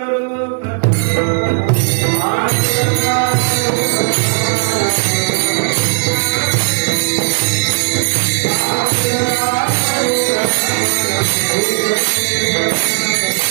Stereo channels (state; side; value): silent; left; digital silence